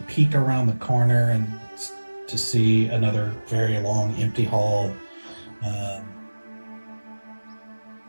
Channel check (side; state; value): both; inverted; correlation -1.00